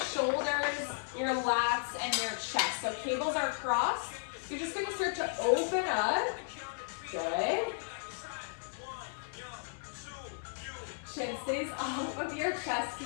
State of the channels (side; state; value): right; silent; 55 dB below the other